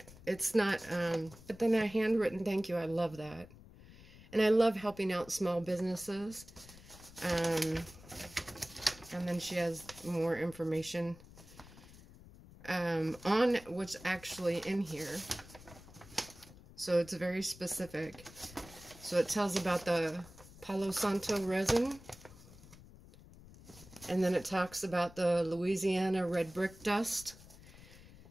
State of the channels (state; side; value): noise; left; rumble, 20 dB below the sound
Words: It's not, but then a handwritten thank you, I love that. And I love helping out small businesses. And then she has more information on what's actually in here. So it's very specific. So it tells about the Palo Santo resin. And then it talks about the Louisiana red brick dust.